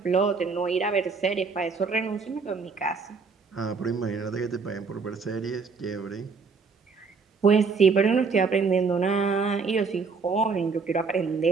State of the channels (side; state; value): left; quieter; 4.9 dB